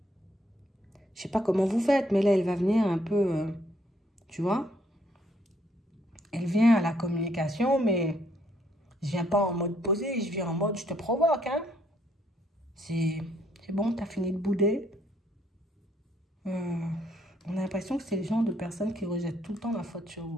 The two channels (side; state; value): both; normal; correlation 0.69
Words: Je sais pas comment vous faites, mais là, elle va venir un peu... tu vois? Elle vient à la communication, mais je viens pas en mode posé. Je viens en mode je te provoque, hein. C'est bon, t'as fini de bouder. On a l'impression que c'est le genre de personne qui rejette tout le temps la faute sur